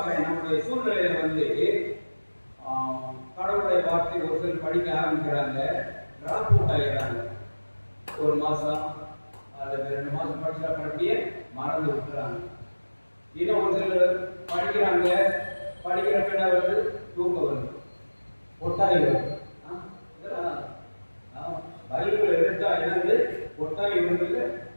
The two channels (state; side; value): inverted; both; correlation -1.00